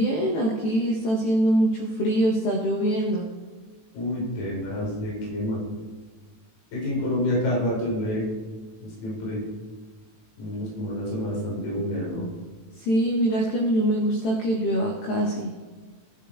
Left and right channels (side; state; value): right; late; 18 ms